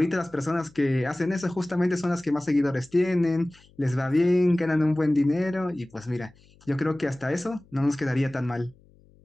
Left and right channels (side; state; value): left; noise; hum, 29 dB below the sound